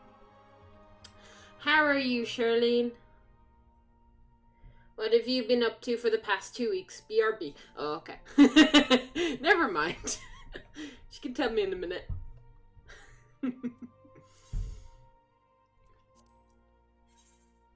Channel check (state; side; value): identical; both; correlation 1.00